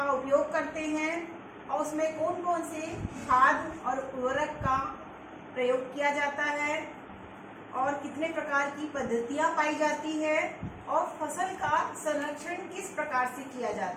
उपयोग करते हैं और उसमें कौन कौन से खाद और उर्वरक का प्रयोग किया जाता है और कितने प्रकार की पद्धतियां पाई जाती है और फसल का संरक्षण किस प्रकार से किया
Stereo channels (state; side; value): identical; both; correlation 1.00